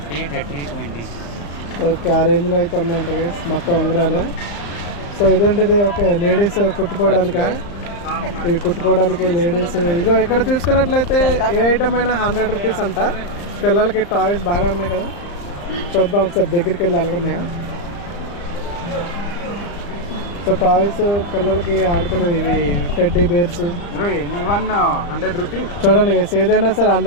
30 20 ఓకే, ఆ రేంజ్లో అయితే ఉన్నాయంట గైస్ మొత్తం ఉంగరాలు. సో ఇదేంటిది? ఓకే, లేడీస్ కుట్టుకోవడానికా? ఇవి కుట్టుకోవడానికి లేడీస్. ఇగో ఇక్కడ చూసుకున్నట్లయితే ఏ ఐటమ్ అయినా 100 రూపీస్ అంట. పిల్లలకి టాయ్స్ బాగా ఉన్నాయి కదా, చూద్దాం ఒకసారి దగ్గరికి వెళ్ళి అలాగున్నాయా. సో టాయ్స్ పిల్లలకి ఆడుకునేవి, ఇవి టెడ్డీ బేర్స్. One 100 rupees. చూడండి గైస్, ఏదైనా సరే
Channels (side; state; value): right; late; 34 ms